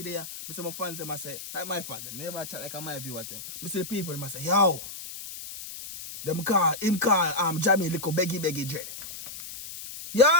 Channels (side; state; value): left; noise; hiss, 11 dB below the sound